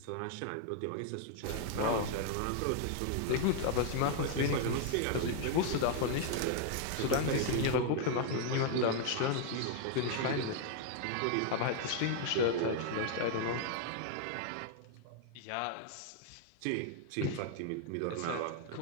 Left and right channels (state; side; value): different; both; correlation 0.00